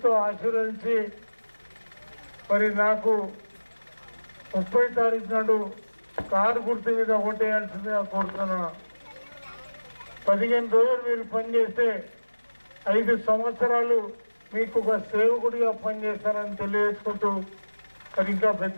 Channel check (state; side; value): inverted; both; correlation -1.00